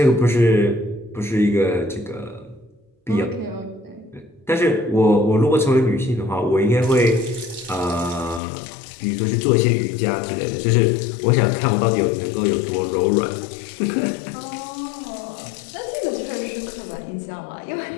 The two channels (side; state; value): right; drops out; at 8.4 s